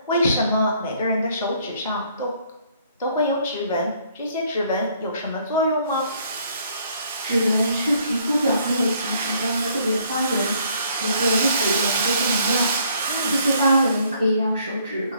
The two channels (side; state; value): both; inverted; correlation -0.64